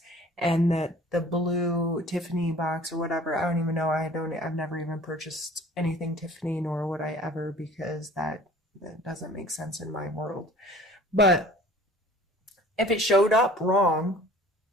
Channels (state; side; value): normal; both; correlation 0.48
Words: and that the blue Tiffany box or whatever, I don't even know, I've never even purchased anything Tiffany, nor would I ever, because that doesn't make sense in my world. But if it showed up wrong,